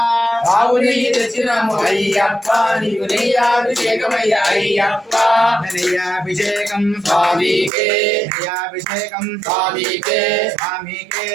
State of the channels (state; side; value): drops out; left; at 7.7 s